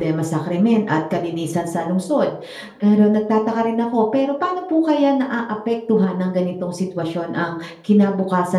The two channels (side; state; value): both; identical; correlation 1.00